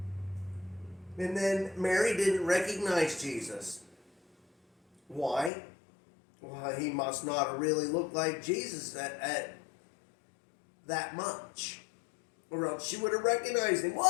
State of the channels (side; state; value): right; drops out; at 5.5 s